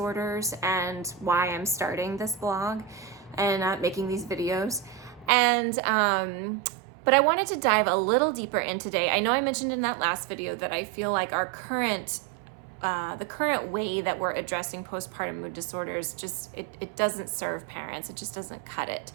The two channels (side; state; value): left; drops out; at 5.3 s